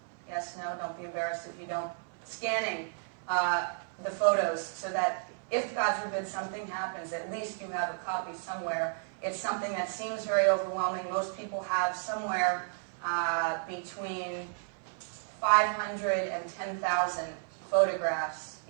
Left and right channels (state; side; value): silent; left; 56 dB below the other